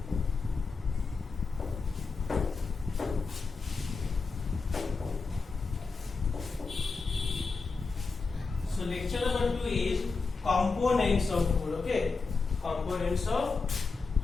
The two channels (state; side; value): quieter; right; 4.4 dB